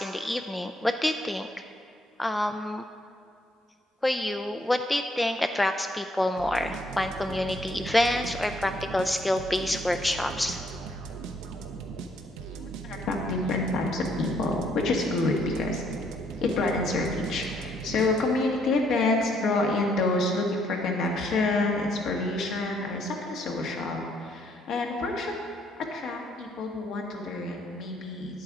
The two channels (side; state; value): both; normal; correlation 0.69